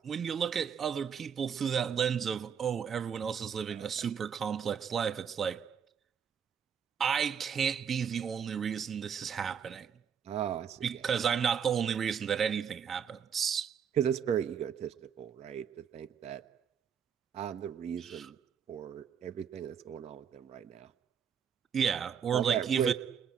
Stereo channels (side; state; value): left; quieter; 7.5 dB